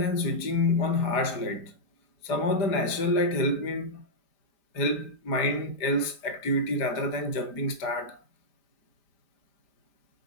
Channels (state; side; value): late; right; 4.9 ms